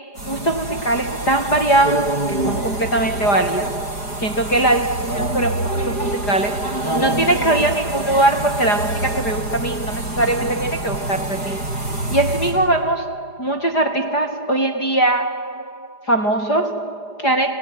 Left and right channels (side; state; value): right; late; 4.9 ms